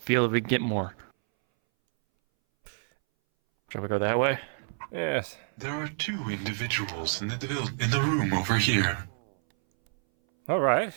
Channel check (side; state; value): left; silent; 59 dB below the other